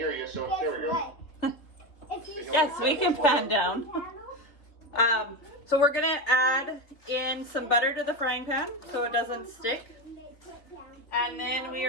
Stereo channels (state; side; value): late; right; 3.3 ms